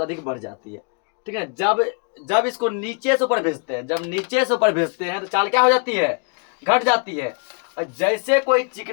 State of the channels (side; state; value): right; quieter; 37.5 dB